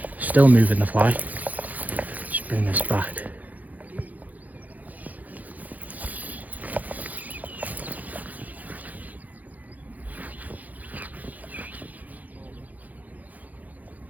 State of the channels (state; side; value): late; left; 0.079 ms